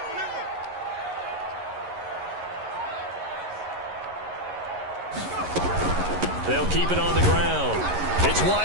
They'll keep it on the ground. It's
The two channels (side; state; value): left; late; 11 ms